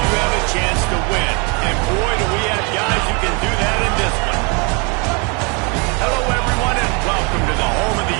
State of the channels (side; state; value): left; quieter; 32.3 dB